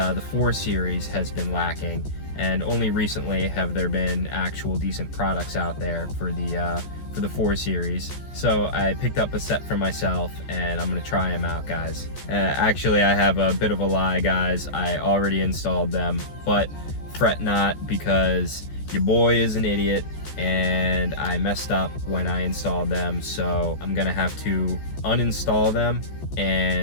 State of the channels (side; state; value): right; late; 14 ms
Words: 4 Series has been lacking. And only recently have there been actual decent products out there for the 4 Series. So I picked up a set for myself and I'm gonna try them out, guys. Actually, I have a bit of a lie, guys. I already installed them, but fret not, because your boy is an idiot and I messed up when I installed them. So I'm gonna have to uninstall them